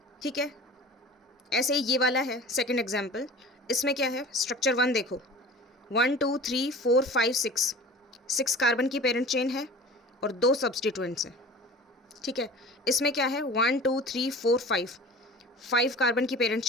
ठीक है, ऐसे ही ये वाला है सेकंड एग्जाम्पल। इसमें क्या है? स्ट्रक्चर 1 देखो, 1 2 3 4 5 6 कार्बन की पेरेंट चेन है और 2 सब्सटीट्यूएंट्स हैं। ठीक है, इसमें क्या है? 1 2 3 4 5 कार्बन की पेरेंट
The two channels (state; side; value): normal; both; correlation 0.40